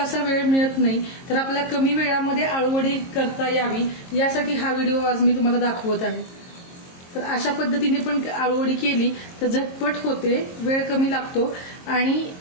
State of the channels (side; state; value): right; late; 22 ms